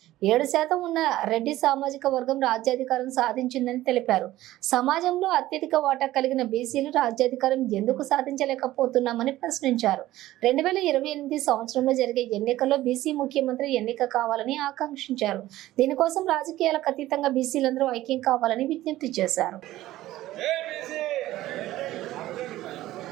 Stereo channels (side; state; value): left; quieter; 15.5 dB